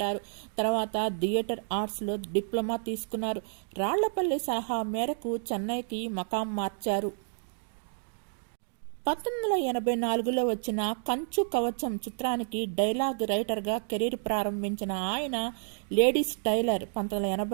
తర్వాత థియేటర్ ఆర్ట్స్లో డిప్లొమా తీసుకున్నారు. రాళ్లపల్లి సలహా మేరకు చెన్నైకి మకాం మార్చారు. 1984లో వచ్చిన కంచు కవచం చిత్రానికి డైలాగ్ రైటర్గా కెరీర్ ప్రారంభించిన ఆయన లేడీస్ టైలర్,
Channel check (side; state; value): left; silent; digital silence